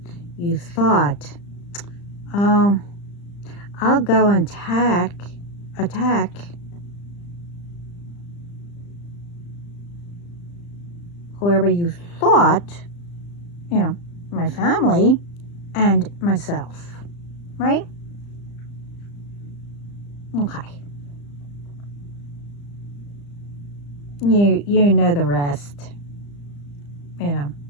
You thought, oh, I'll go and attack whoever you thought, my family and myself, right? Okay. You know the rest,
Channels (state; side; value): late; right; 35 ms